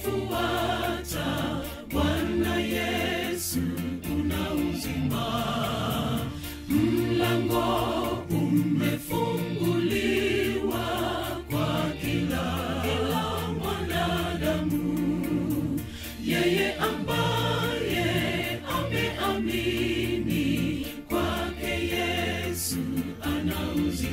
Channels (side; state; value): both; identical; correlation 1.00